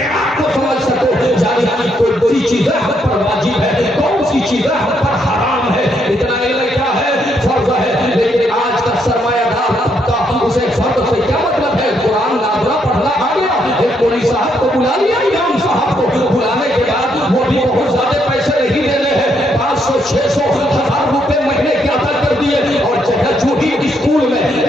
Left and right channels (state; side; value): normal; both; correlation 0.74